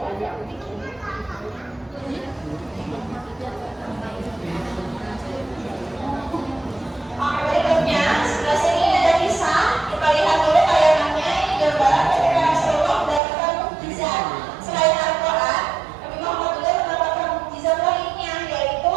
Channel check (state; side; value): drops out; left; at 13.2 s